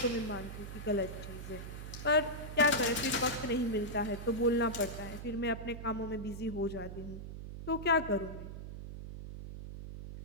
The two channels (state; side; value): noise; right; hum, 9 dB below the sound